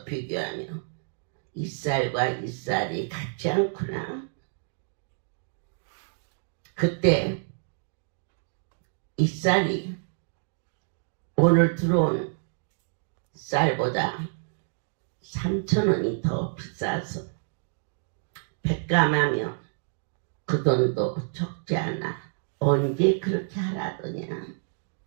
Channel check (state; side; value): silent; left; digital silence